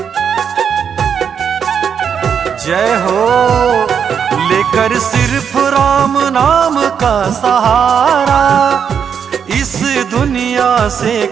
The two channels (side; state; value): left; quieter; 7.4 dB